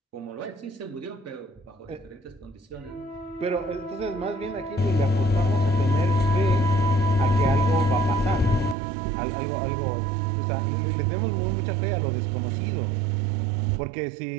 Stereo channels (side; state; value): left; drops out; at 8.8 s